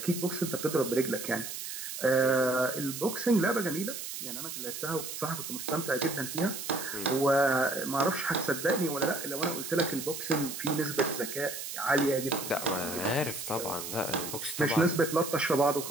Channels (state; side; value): noise; right; hiss, 7 dB below the sound